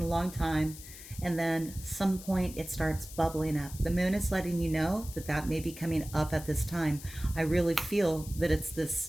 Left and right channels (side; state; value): left; noise; hiss, 15 dB below the sound